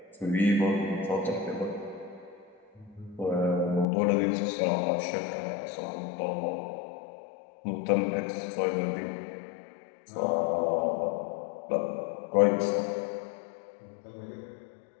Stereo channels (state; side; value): drops out; right; at 3.9 s